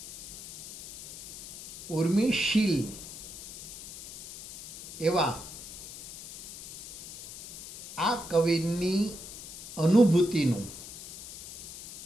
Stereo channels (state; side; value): noise; left; hiss, 13 dB below the sound